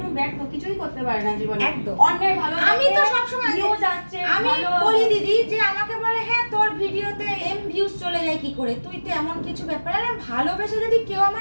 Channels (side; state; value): both; inverted; correlation -1.00